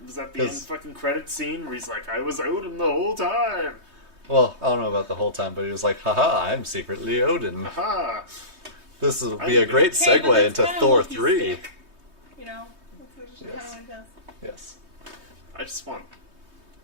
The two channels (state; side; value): late; left; 3.2 ms